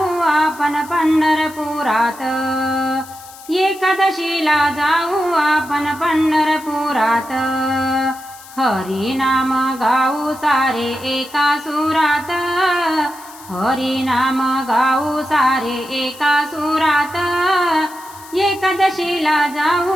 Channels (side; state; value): left; noise; hiss, 19 dB below the sound